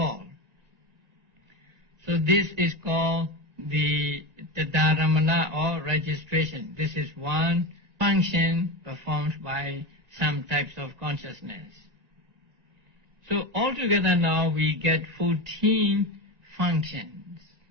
So this is called the dharamana or registration. This is one function performed by some types of consciousness. So altogether now we get 14 functions.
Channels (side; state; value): left; late; 2.1 ms